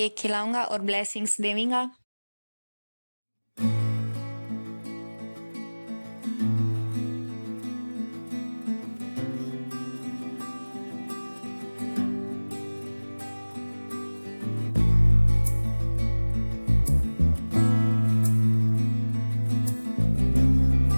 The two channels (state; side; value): inverted; both; correlation -1.00